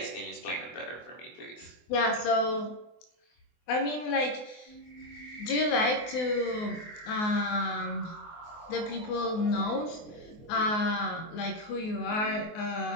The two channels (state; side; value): late; right; 24 ms